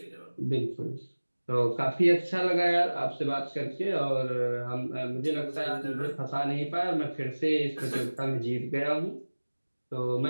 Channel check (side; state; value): both; inverted; correlation -1.00